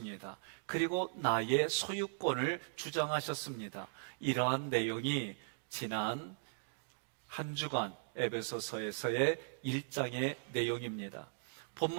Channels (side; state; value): left; silent; digital silence